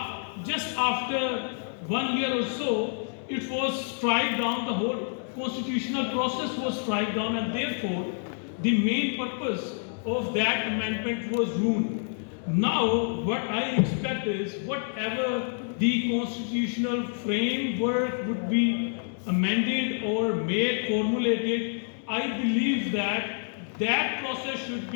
just after 1 year or so, it was struck down, the whole constitutional process was struck down, and therefore the main purpose of that amendment was ruined. Now what I expect is, whatever the constitutional framework would be amended or made, formulated, I believe that process should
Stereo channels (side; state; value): right; silent; digital silence